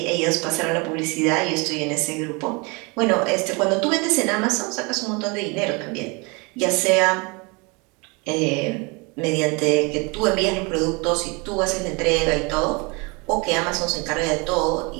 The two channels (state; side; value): quieter; left; 29.2 dB